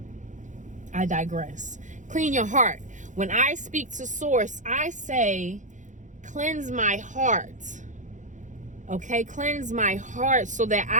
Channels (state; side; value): late; left; 0.36 ms